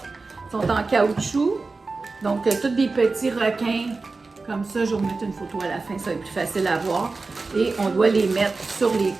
Ils sont en caoutchouc. Donc, tous des petits requins. Comme ça, je vais vous mettre une photo à la fin, ça va être plus facile à voir. Et on doit les mettre sur les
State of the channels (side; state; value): left; quieter; 3.8 dB